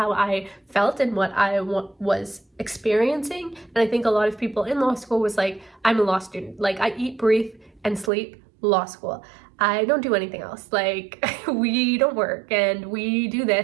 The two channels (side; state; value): left; drops out; at 8.1 s